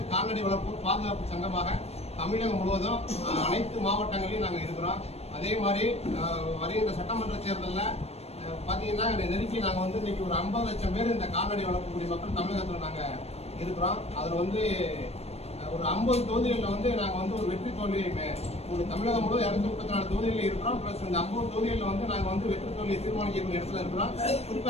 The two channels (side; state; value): right; late; 0.30 ms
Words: கால்நடை வளர்ப்போர் பாதுகாப்பு சங்கமாக தமிழகம் முழுவதும் அனைத்து மாவட்டங்களிலும் நாங்கள் இருக்கிறோம். அதே மாதிரி வருகின்ற சட்டமன்ற தேர்தலில் பார்த்தீங்கன்னா நெருக்கி நாங்கள் இன்னைக்கு ஒரு 50 லட்சம் பேர் இந்த கால்நடை வளர்க்கக்கூடிய மக்கள் தமிழகத்தில் நாங்கள் இருக்கிறோம். அதில் ஒரு 50 தொகுதிகளில் நாங்கள் ஒரு வெற்றி தோல்வியை தமிழகம் முழுவதும் 234 தொகுதிகளில் இருக்கிறோம். ப்ளஸ் இந்த 50 தொகுதிகளில் நாங்கள் வெற்றி தோல்வியை தீர்மானிக்கக்கூடிய இடத்துல இருக்கிறோம்.